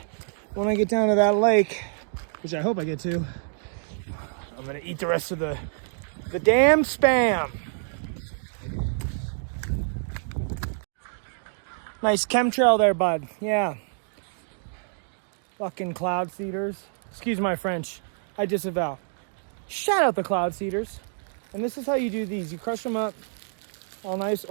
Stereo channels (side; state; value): left; silent; digital silence